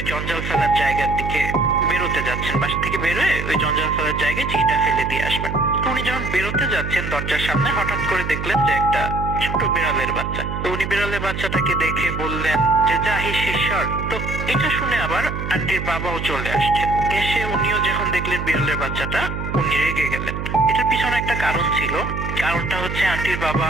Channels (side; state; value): right; noise; hum, 5 dB below the sound